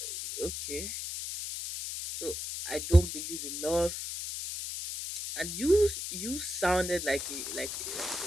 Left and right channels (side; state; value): left; noise; hiss, 5 dB below the sound